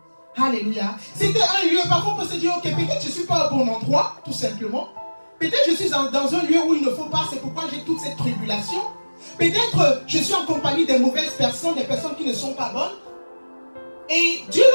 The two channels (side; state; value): both; inverted; correlation -1.00